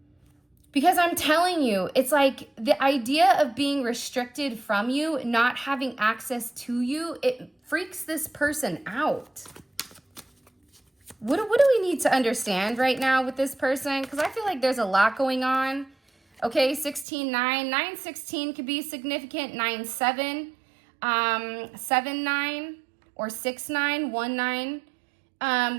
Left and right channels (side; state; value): left; drops out; at 17.1 s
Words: Because I'm telling you, it's like the idea of being restricted from you, not having access to you, it freaks this person out. What do we need to understand right now with this person? Because I feel like there's a lot going on. Okay, 16-9. 9-16 could be significant. 9-7. 7-9. Or 6-9.